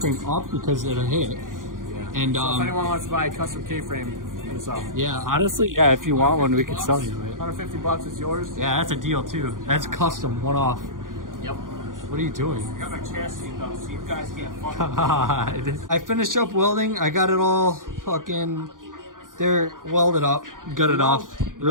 up because it'll hit. And So if anyone wants to buy a custom K-frame, hit us up. yeah, honestly, yeah, if you want one, we could sell you it. $150 is yours. Yeah, that's a deal too. That's custom, one off. Yep. What are you doing? I got my chassis though, so you guys can't fuck. God. I finished up welding. I got it all fucking. They're welded up, gutted off.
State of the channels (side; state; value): left; late; 0.90 ms